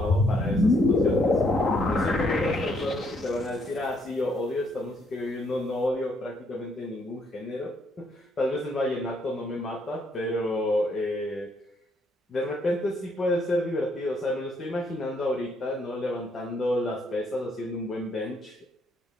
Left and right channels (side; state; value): both; normal; correlation 0.71